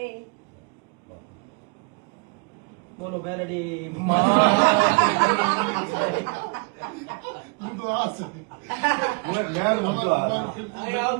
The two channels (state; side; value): quieter; left; 32.5 dB